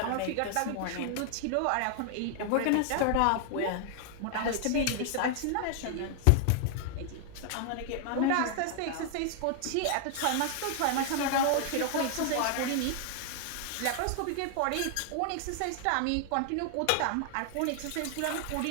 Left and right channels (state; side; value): different; both; correlation 0.00